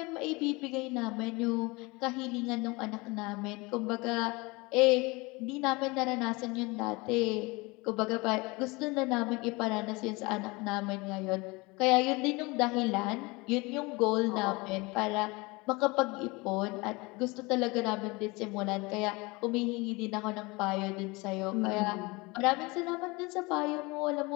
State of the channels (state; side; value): quieter; right; 25.0 dB